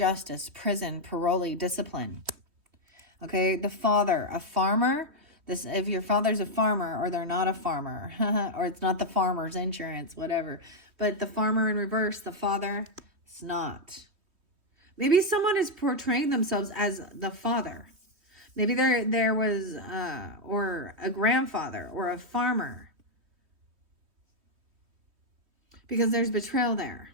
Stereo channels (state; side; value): late; left; 3.1 ms